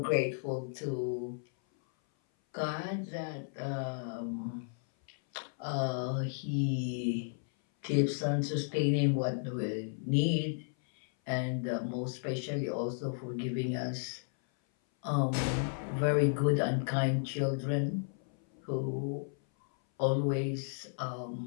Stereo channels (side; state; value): right; silent; 55 dB below the other